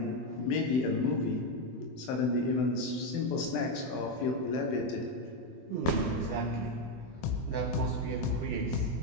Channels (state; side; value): late; right; 24 ms